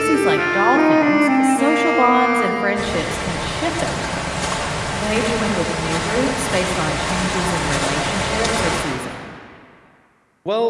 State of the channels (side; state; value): both; identical; correlation 1.00